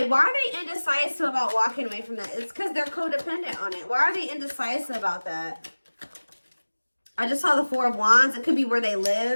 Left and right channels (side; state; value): both; inverted; correlation -1.00